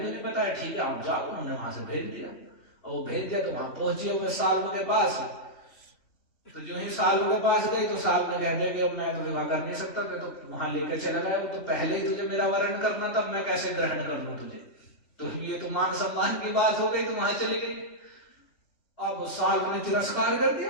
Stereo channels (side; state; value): right; late; 3.2 ms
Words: नहीं बताया, ठीक है आप जाओ। उन्होंने वहां से भेज दिया और वो भेज दिया तो वहां पहुंची हुए साल के पास। तो जो ही साल के पास गई तो साल ने कहने कि अब मैं तो विवाह कर नहीं सकता, मैं तो वहां लेकर चला गया। वो तो पहले ही तुझे मेरा वरण करना था, मैं कैसे ग्रहण कर लूं तुझे। तो ये तो मान सम्मान की बात हो गई, तो वहां चली गई। अब साल ने तिरस्कार कर